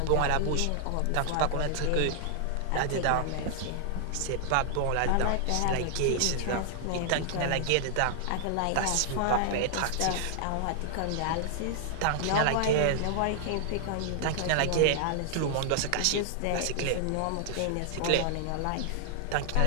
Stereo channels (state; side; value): different; both; correlation 0.00